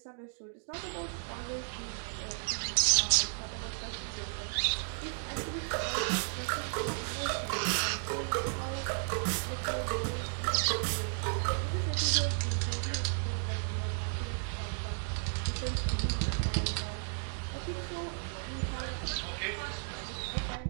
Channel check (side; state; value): left; silent; digital silence